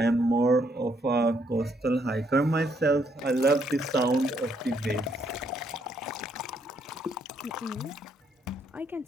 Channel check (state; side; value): normal; both; correlation 0.72